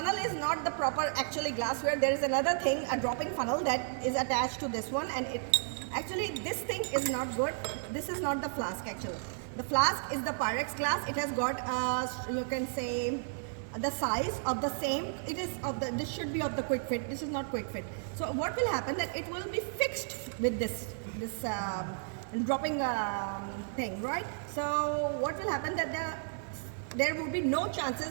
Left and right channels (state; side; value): silent; left; digital silence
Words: is not the proper actually glassware. There is another thing, a dropping funnel that is attached to this one, and actually this thing is not good. This is not the flask actually. The flask is the Pyrex glass. It has got, you can say, the size of the same. It is of the. This should be of the quick fit. This is not quick fit. So what will happen that it will be fixed with this dropping thing, right? So what will happen that there will be no